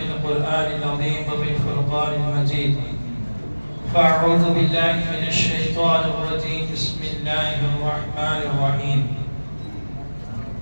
القرآن العظيم وفي الفرقان المجيد: فأعوذ بالله من الشيطان الرجيم. بسم الله الرحمن الرحيم.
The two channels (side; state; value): both; inverted; correlation -1.00